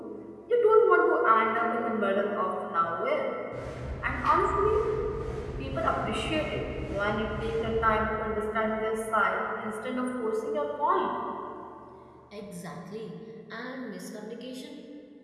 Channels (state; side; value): identical; both; correlation 1.00